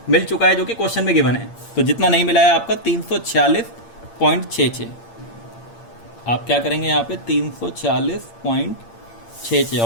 मिल चुका है जो कि क्वेश्चन में गिवन है। तो जितना नहीं मिला है आपका 346.66, आप क्या करेंगे यहाँ पे? 346.66,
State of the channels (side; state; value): right; late; 8.7 ms